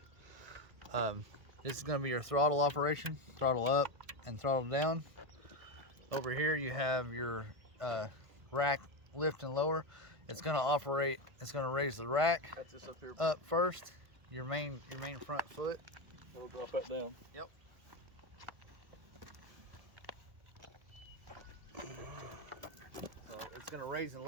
This is gonna be your throttle operation, throttle up and throttle down. Over here you have your rack lift and lower. It's gonna raise the rack up first, your main front foot. It'll drop that down. Yep. It's gonna raise and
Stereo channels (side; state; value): left; late; 1.5 ms